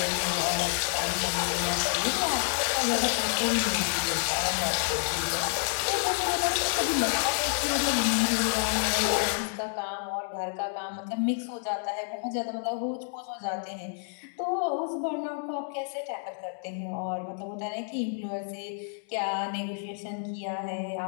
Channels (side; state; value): right; silent; digital silence